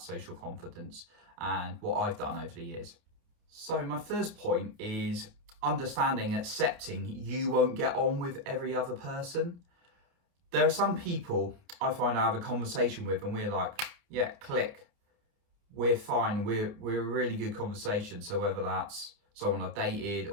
social confidence and what I've done over the years. So my first point is understanding, accepting you won't get on with every other person. There are some people I find I have a conversation with and we're like, yeah, click. We're fine. We're a really good conversation. So whether that's someone I've dated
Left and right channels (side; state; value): left; late; 29 ms